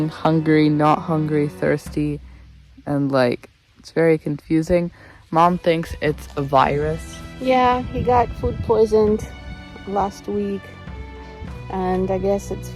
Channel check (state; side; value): identical; both; correlation 1.00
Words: hungry, not hungry, thirsty, and like it's very confusing. Mom thinks it's a virus. Yeah, he got food poisoned last week, and I guess it's